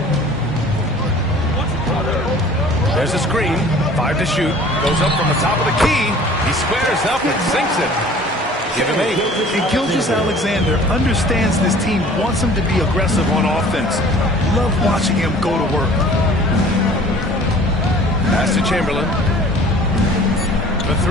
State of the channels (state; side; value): normal; both; correlation 0.48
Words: There's a screen. 5 to shoot. Goes up from the top of the key. He squares up and sinks it. Give him 8. And Gilgeous-Alexander understands this team wants him to be aggressive on offense. Love watching him go to work. Pass to Chamberlain. For